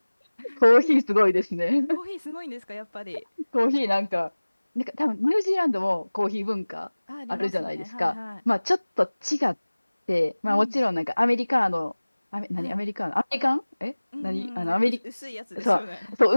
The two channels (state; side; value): inverted; both; correlation -1.00